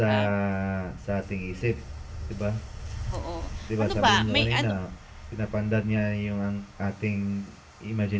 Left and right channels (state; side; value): identical; both; correlation 1.00